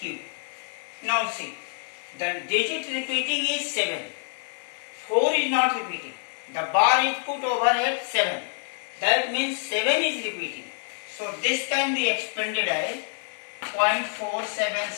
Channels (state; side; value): silent; right; 57 dB below the other